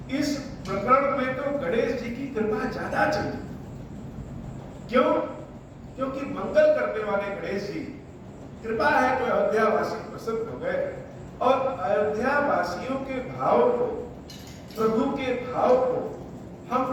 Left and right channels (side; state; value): both; identical; correlation 1.00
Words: इस प्रकरण में तो गणेश जी की कृपा ज्यादा चाहिए। क्यों? क्योंकि मंगल करने वाले गणेश जी, कृपा है तो अयोध्या वासी प्रसन्न हो गए, और अयोध्या वासियों के भाव को, प्रभु के भाव को हम